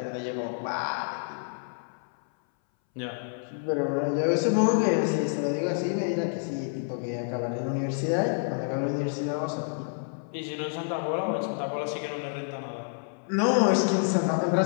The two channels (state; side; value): silent; right; 59 dB below the other